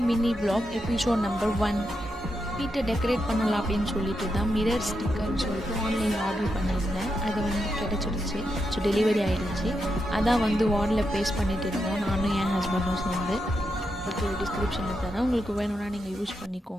mini vlog episode number 1. வீட்டை டெக்கரேட் பண்ணலாம் அப்படின்னு சொல்லிட்டு தான் மிரர் ஸ்டிக்கர்னு சொல்லிட்டு ஆன்லைனில் ஆர்டர் பண்ணியிருந்தேன். அது கிடச்சிடுச்சு. ஸோ டெலிவரி ஆகிடுச்சு. அதான் வார்டில் பேஸ்ட் பண்ணிட்டு இருந்தோம், நானும் என் ஹஸ்பண்டும் சேர்ந்து. அதுக்கு டிஸ்கிரிப்ஷனில் தரேன், உங்களுக்கு வேணும்னா நீங்கள் யூஸ்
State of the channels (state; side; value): normal; both; correlation 0.85